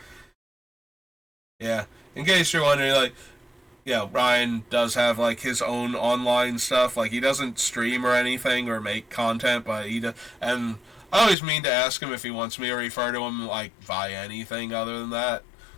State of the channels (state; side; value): drops out; right; at 11.4 s